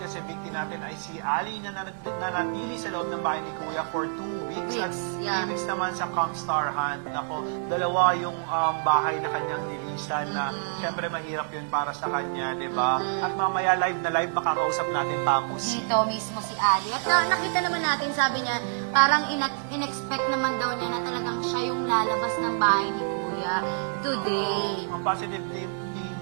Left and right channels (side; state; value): left; silent; digital silence